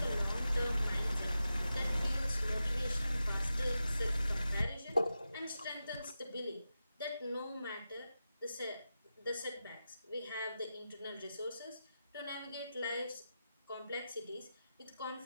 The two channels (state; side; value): inverted; both; correlation -0.91